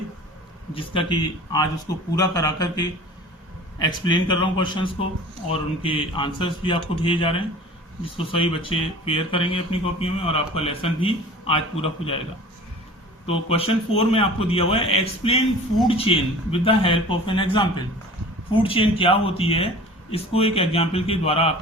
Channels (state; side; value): normal; both; correlation 0.42